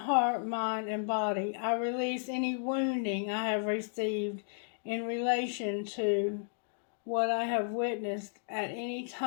mind, and body. I release any wounding I have received in relation to what I have witnessed at any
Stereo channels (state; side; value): silent; right; digital silence